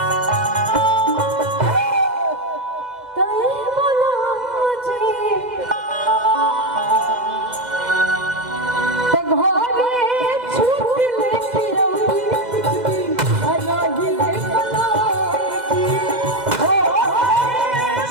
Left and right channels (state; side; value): late; left; 2.0 ms